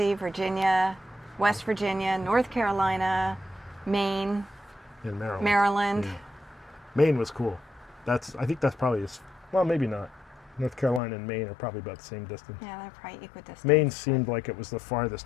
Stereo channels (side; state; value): right; drops out; at 11.0 s